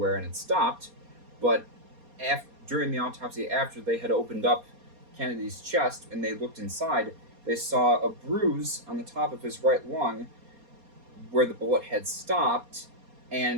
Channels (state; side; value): late; left; 4.2 ms